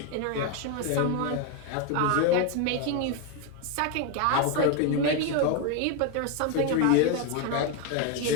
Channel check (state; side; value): different; both; correlation 0.02